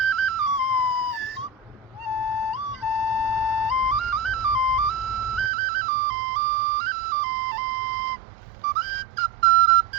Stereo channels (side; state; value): left; drops out; at 5.5 s